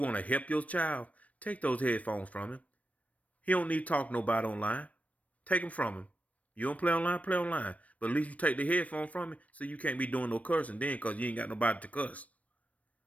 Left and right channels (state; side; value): late; right; 0.067 ms